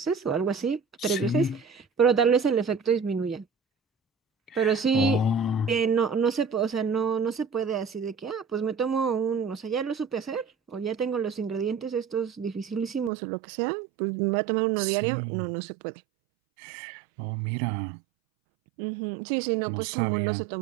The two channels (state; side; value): drops out; left; at 13.1 s